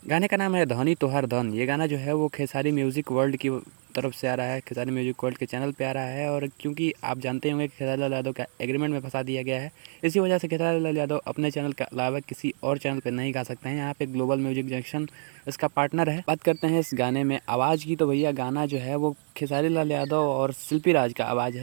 गाने का नाम है धनी तोहर धन। ये गाना जो है वो खेसारी म्यूज़िक वर्ल्ड की तरफ से आ रहा है, खेसारी म्यूज़िक वर्ल्ड के चैनल पे आ रहा है। और क्योंकि आप जानते होंगे कि खेसारी लाल यादव का एग्रीमेंट में फँसा दिया गया है, इसी वजह से खेसारी लाल यादव अपने चैनल के अलावा किसी और चैनल पे नहीं गा सकते हैं। यहाँ पे ग्लोबल म्यूजिक जंक्शन इसका पार्टनर है। बात करते हैं इस गाने में आवाज़ की, तो भैया गाना जो है वो खेसारी लाल यादव और शिल्पी राज का आवाज़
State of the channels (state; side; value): silent; left; 60 dB below the other